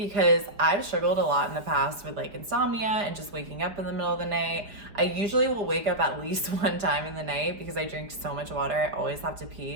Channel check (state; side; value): late; left; 4.9 ms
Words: I've struggled a lot in the past with like insomnia and just waking up in the middle of the night. I usually will wake up at least one time in the night because I drink so much water. I always have to